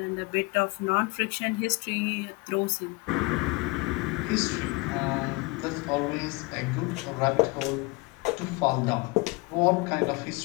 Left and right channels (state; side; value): quieter; right; 25.4 dB